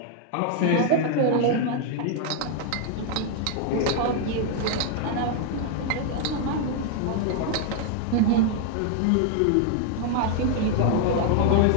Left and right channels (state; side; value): different; both; correlation 0.00